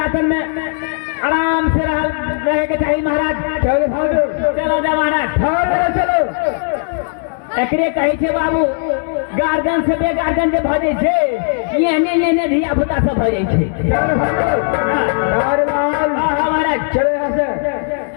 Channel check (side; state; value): right; silent; 63 dB below the other